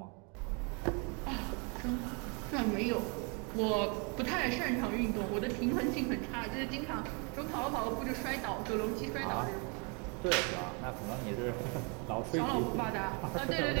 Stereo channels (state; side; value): quieter; left; 34.2 dB